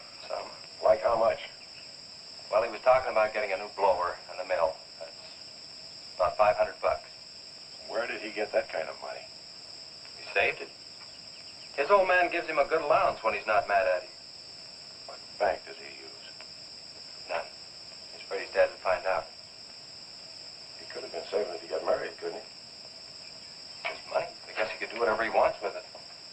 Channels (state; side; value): identical; both; correlation 1.00